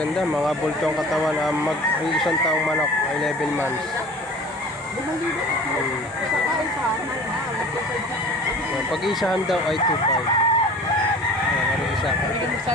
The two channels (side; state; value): both; normal; correlation 0.42